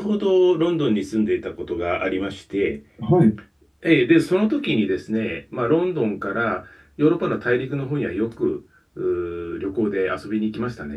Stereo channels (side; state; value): both; identical; correlation 1.00